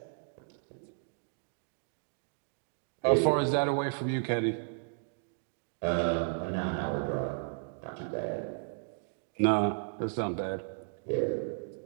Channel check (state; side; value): silent; left; digital silence